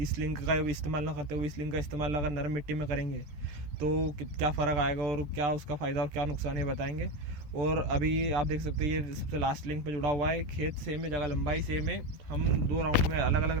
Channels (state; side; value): late; left; 14 ms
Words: लिंक का इस्तेमाल ना करते हुए इस लिंक का इस्तेमाल अगर नरम मिट्टी में करेंगे तो क्या फ़र्क आएगा और क्या उसका फ़ायदा और क्या नुकसान है बताएंगे। और अभी आप देख सकते हैं ये सबसे लास्ट लिंक पे जुड़ा हुआ है, खेत सेम है, जगह लंबाई सेम है। हम 2 राउंड में, अलग अलग